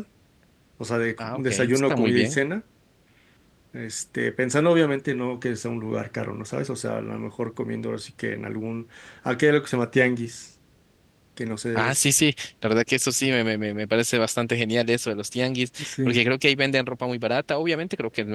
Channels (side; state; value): both; identical; correlation 1.00